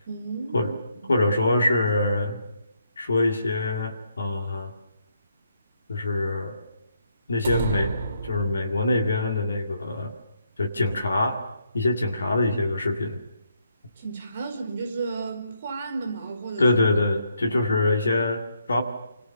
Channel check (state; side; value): inverted; both; correlation -0.75